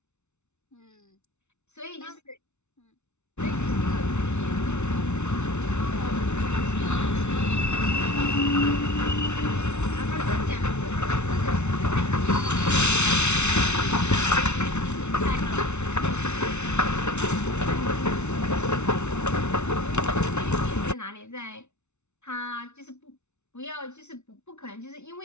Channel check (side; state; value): right; late; 0.82 ms